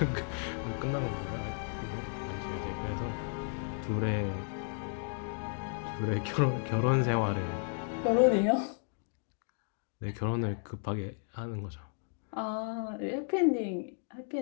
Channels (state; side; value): silent; right; 55 dB below the other